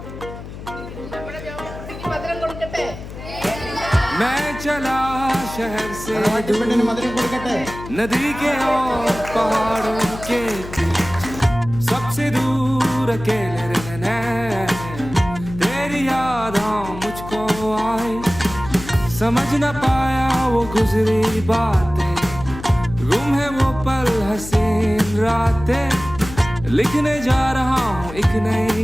മധുരം കൊടുക്കട്ടെ. मैं चला शहर से പെണ്ണിന് മധുരം കൊടുക്കട്ടെ. नदी के और पहाड़ों के बीच सबसे दूर अकेले रहना है। तेरी यादें मुझको आई, समझ न पाया वो गुजरी बातें, गुम है वो पल हसीन रातें। लिखने जा रहा हूँ एक नई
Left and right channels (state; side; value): noise; left; hum, 12 dB below the sound